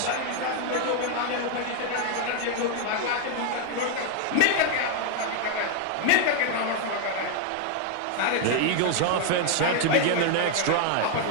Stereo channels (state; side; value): different; both; correlation 0.00